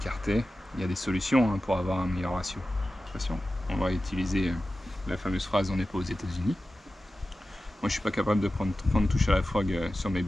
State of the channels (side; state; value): both; normal; correlation 0.94